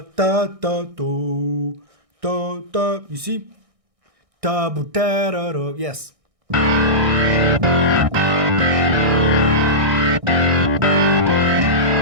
da da do, da da. You see? Da bu da da do. Yes.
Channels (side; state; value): left; late; 1.6 ms